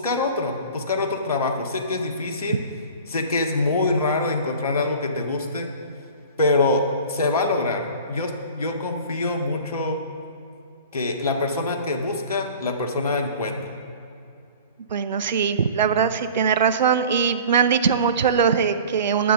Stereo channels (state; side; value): inverted; both; correlation -0.42